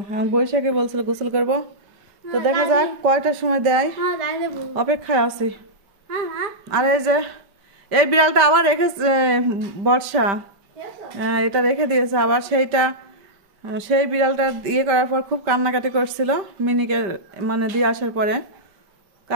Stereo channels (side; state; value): left; late; 5.1 ms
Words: এখন বৈশাখী বলছিল গোসল করবো, তো দেখা যাক কয়টার সময় দেয়, অপেক্ষায় আছি। আর এই যে এই বিড়ালটা আবার রেখেছে বর্ষা, এটা রেখে দিয়েছে আবার। সেই বিড়ালটা ইয়ে করার পর খুব কান্নাকাটি করছিল মিনিকে, মানে দিয়ে আসার পরে,